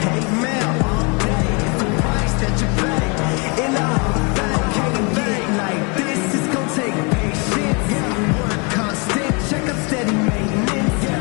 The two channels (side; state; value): right; quieter; 32.4 dB